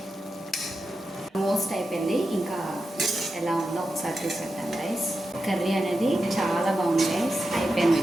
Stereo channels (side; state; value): both; normal; correlation 0.89